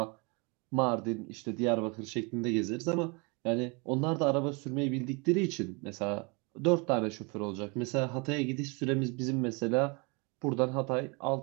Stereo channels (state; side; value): quieter; left; 30.2 dB